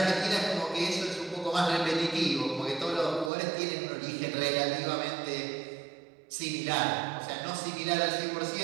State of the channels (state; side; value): drops out; left; at 3.3 s